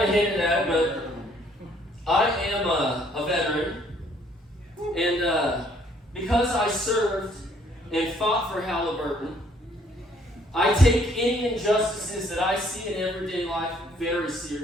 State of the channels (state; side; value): normal; both; correlation 0.64